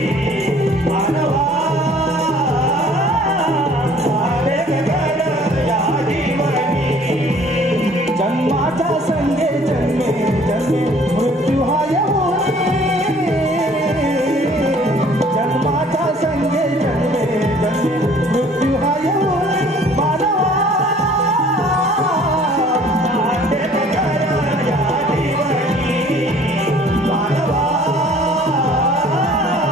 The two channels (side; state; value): both; normal; correlation 0.54